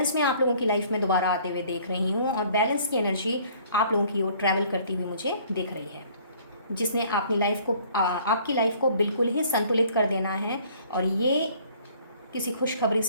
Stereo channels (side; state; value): both; inverted; correlation -0.56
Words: में आप लोगों की लाइफ में दोबारा आते हुए देख रही हूँ, और बैलेंस की एनर्जी आप लोगों की ओर ट्रैवल करती हुई मुझे दिख रही है, जिसने अपनी लाइफ को आपकी लाइफ को बिल्कुल ही संतुलित कर देना है। और ये किसी खुशखबरी